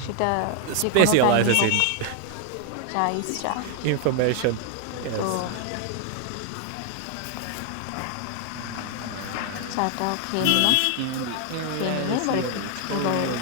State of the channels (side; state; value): both; different; correlation 0.00